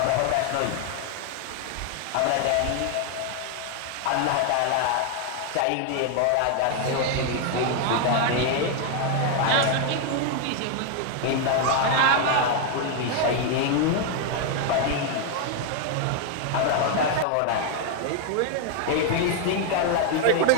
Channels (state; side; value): different; both; correlation 0.00